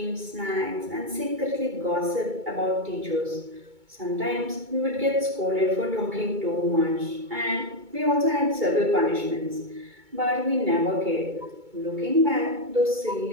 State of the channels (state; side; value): late; left; 2.2 ms